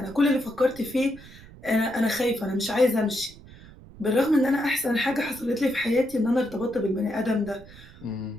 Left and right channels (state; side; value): noise; right; rumble, 19 dB below the sound